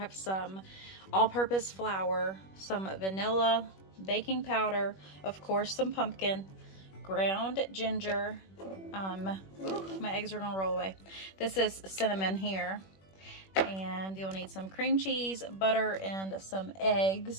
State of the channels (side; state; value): right; late; 21 ms